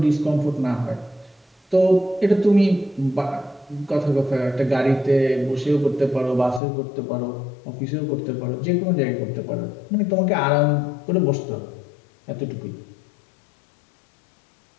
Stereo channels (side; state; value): right; drops out; at 6.6 s